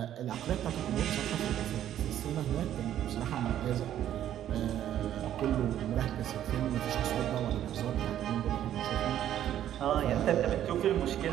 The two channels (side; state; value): left; quieter; 11.3 dB